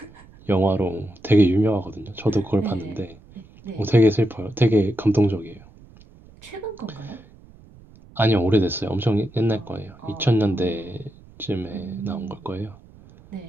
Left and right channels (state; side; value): noise; right; rumble, 24 dB below the sound